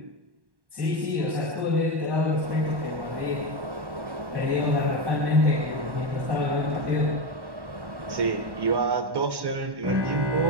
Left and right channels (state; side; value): late; left; 1.1 ms